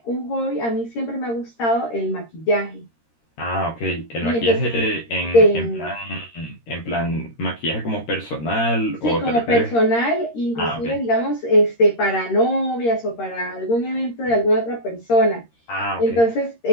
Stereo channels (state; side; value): late; right; 13 ms